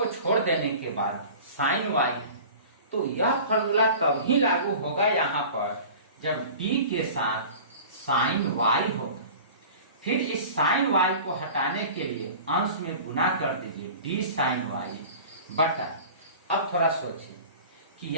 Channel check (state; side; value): inverted; both; correlation -0.40